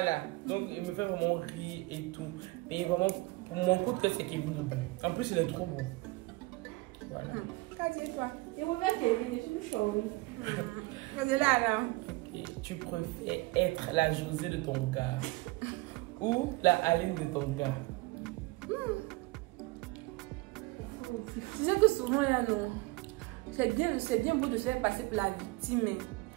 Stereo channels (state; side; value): quieter; left; 22.6 dB